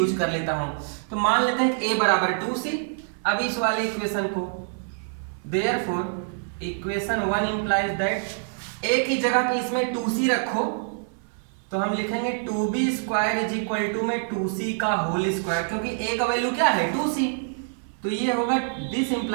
कर लेता हूं। तो मान लेते हैं कि a बराबर 2c। अब इस वाले इक्वेशन को, therefore equation 1 implies that a की जगह पे इसमें 2c रखो, तो हम लिखेंगे 2b square is equal to में 2c का होल स्क्वायर, क्योंकि a का वैल्यू क्या है, 2c। तो ये होगा, this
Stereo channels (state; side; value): silent; left; 57 dB below the other